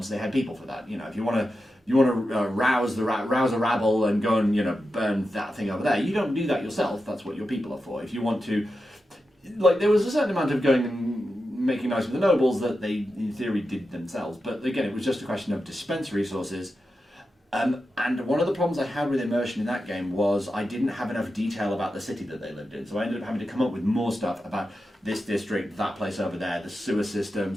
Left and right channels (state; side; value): normal; both; correlation 0.90